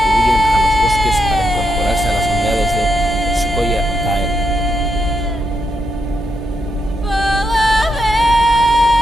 huyen a los bosques para incorporarse a las unidades de Skoya Tael.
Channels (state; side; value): normal; both; correlation 0.81